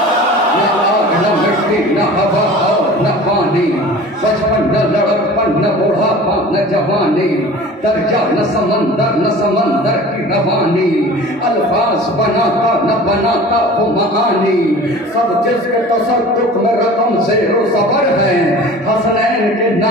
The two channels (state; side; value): normal; both; correlation 0.41